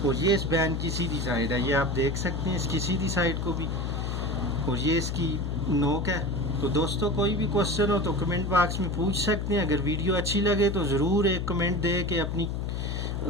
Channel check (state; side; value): noise; left; hum, 2 dB below the sound